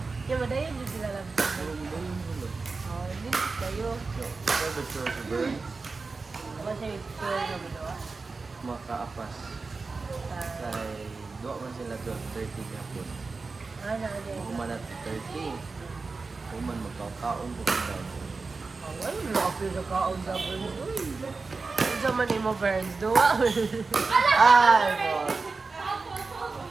Yung madayon din sila lang. Hindi kayo. Private store sa burn, Kasi store na ginawa. makaapas. Kay duwa man sila 12:30 gapon. Ano din? Human at 30. Human magkakaon po daw. Ay, lapis na kaon sa burn. Uy! Ano sa man mo, Burns? Duwa? Ay, boss.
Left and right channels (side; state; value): left; quieter; 4.1 dB